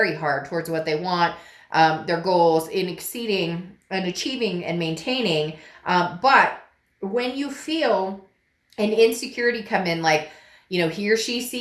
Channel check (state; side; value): identical; both; correlation 1.00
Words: hard towards what they want, their goals, in exceeding and achieving and maintaining. But when you feel an insecurity come in, like, he or she